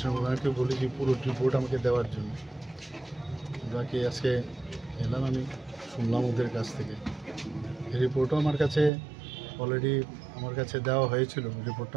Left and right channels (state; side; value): drops out; left; at 8.9 s